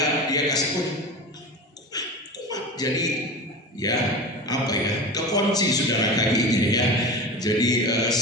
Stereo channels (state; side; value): normal; both; correlation 0.29